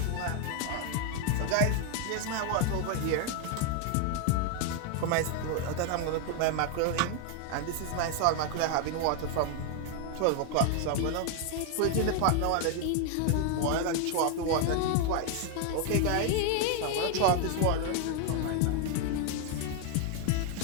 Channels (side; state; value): both; different; correlation 0.00